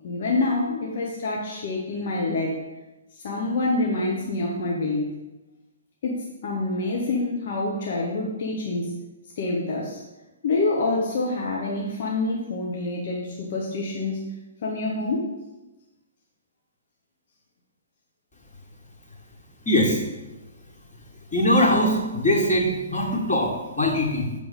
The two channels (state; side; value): inverted; both; correlation -0.36